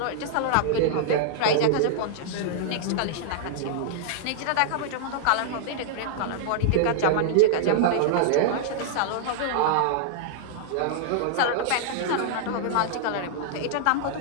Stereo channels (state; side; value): different; both; correlation -0.01